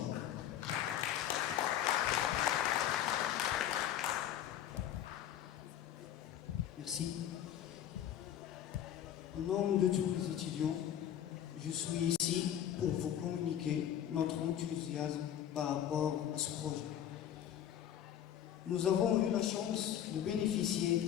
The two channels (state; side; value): quieter; right; 10.6 dB